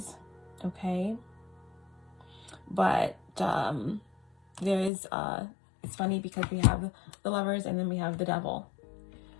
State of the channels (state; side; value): drops out; right; at 4.9 s